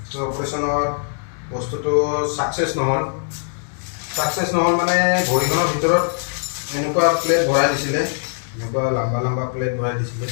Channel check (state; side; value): silent; right; digital silence